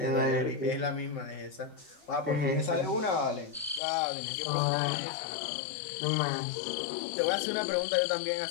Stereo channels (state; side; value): drops out; right; at 3.8 s